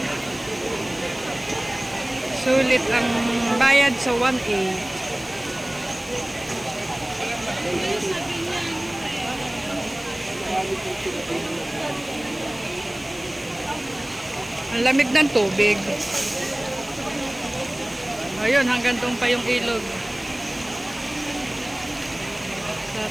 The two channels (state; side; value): noise; left; hiss, 21 dB below the sound